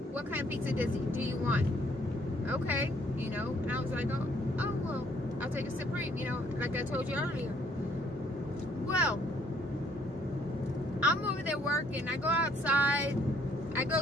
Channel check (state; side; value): normal; both; correlation 0.65